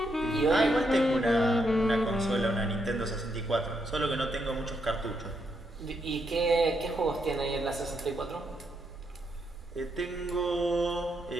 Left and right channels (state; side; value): normal; both; correlation 0.79